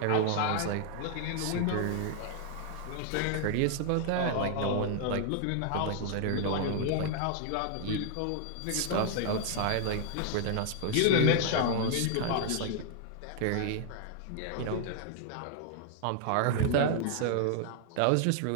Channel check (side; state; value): both; different; correlation -0.01